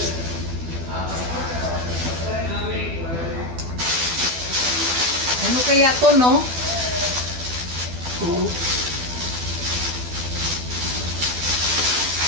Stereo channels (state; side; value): late; left; 12 ms